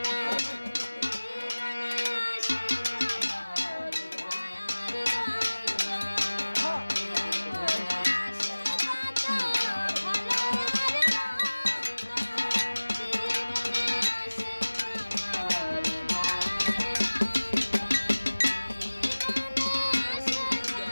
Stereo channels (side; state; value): both; inverted; correlation -1.00